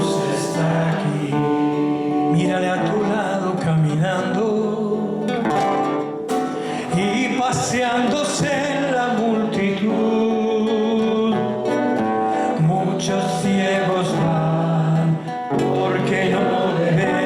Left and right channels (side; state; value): both; identical; correlation 1.00